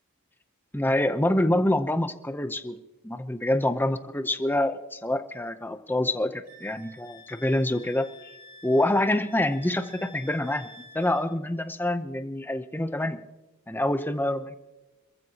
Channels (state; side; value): normal; both; correlation 0.81